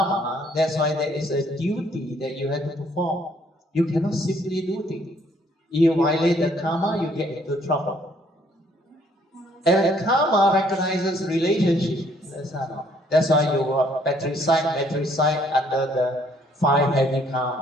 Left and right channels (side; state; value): both; normal; correlation 0.65